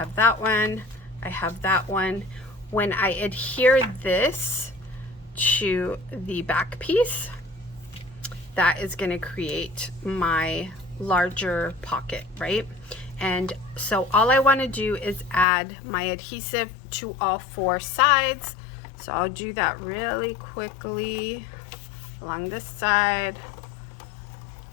that one, I have that one. When I adhere this to the back piece, that is going to create my larger pocket, right? And so all I want to do is add my adhesive to all 4 sides. So I'll do that really quickly along this side,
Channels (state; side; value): drops out; right; at 15.5 s